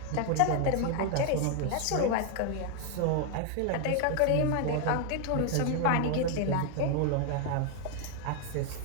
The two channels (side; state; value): both; different; correlation 0.00